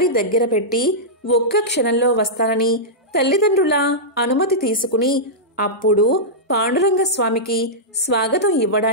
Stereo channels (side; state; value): both; normal; correlation -0.12